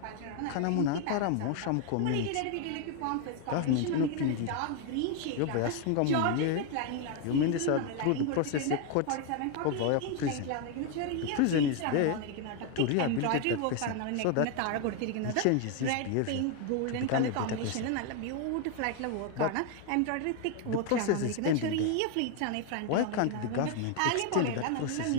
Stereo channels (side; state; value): both; different; correlation 0.01